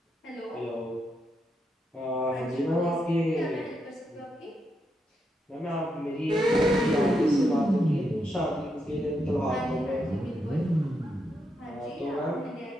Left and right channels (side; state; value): both; normal; correlation 0.82